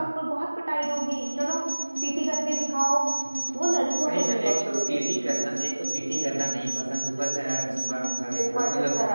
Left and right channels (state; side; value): inverted; both; correlation -1.00